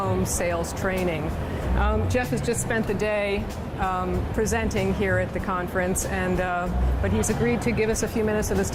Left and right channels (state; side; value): identical; both; correlation 1.00